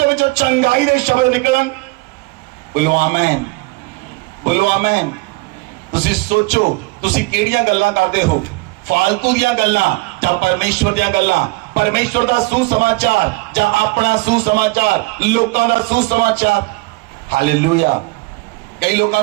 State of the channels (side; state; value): left; quieter; 24.1 dB